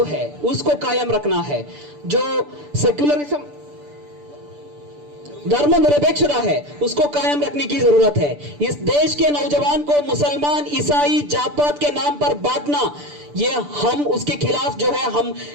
है उसको कायम रखना है। जो सेक्युलरिज्म, धर्मनिरपेक्षता है उसको कायम रखने की जरूरत है। इस देश के नौजवान को मुसलमान, ईसाई, जात पात के नाम पर बांटना, ये हम उसके खिलाफ जो है हम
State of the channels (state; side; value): late; left; 6.8 ms